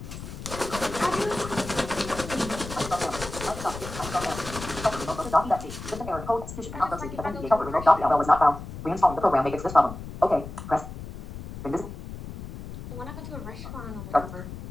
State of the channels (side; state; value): left; noise; rumble, 11 dB below the sound